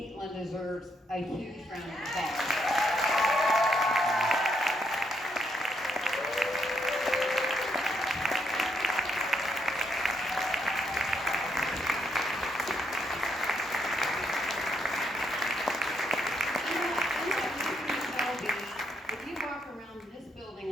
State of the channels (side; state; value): both; normal; correlation 0.76